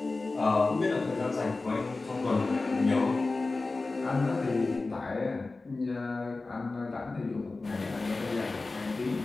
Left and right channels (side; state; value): right; quieter; 3.5 dB